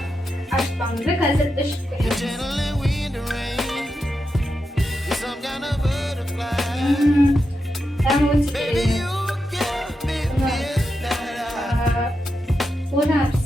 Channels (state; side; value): normal; both; correlation 0.87